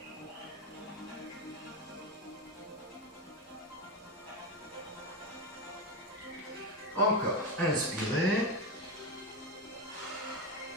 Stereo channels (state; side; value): normal; both; correlation 0.14